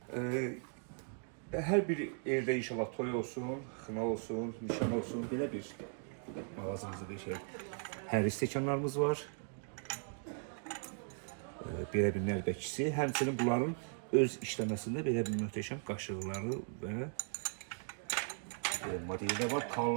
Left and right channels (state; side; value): silent; left; 52 dB below the other